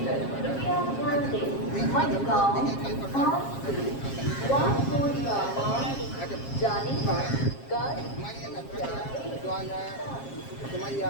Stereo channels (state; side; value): late; right; 7.4 ms